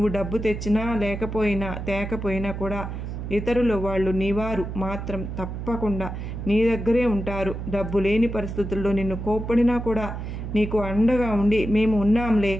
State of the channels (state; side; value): noise; right; hum, 6 dB below the sound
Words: డబ్బు తెచ్చినా తేకపోయినా కూడా ఇతరులు వాళ్ళు నీవారు మాత్రం తప్పకుండా నీ దగ్గరే ఉంటారు. డబ్బు లేని పరిస్థితుల్లో నిన్ను కోప్పడినా కూడా నీకు అండగా ఉండి మేము ఉన్నాంలే